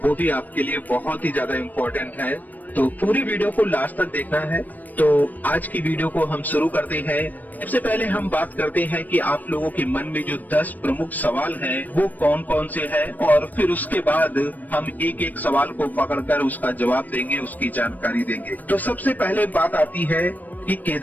वो भी आपके लिए बहुत ही ज्यादा इम्पोर्टेंट है। तो पूरी वीडियो को लास्ट तक देखना है। तो आज की वीडियो को हम शुरू करते हैं। सबसे पहले हम बात करते हैं कि आप लोगों के मन में जो 10 प्रमुख सवाल हैं वो कौन कौन से हैं, और फिर उसके बाद हम एक एक सवाल को पकड़कर उसका जवाब देंगे, उसकी जानकारी देंगे। तो सबसे पहले बात आती है कि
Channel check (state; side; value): late; right; 0.084 ms